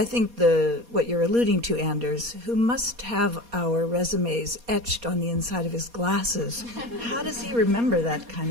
think what you're alluding to, Anders, who must have our resumes etched on the inside of his glasses. How does he remember that kind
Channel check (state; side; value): late; left; 4.2 ms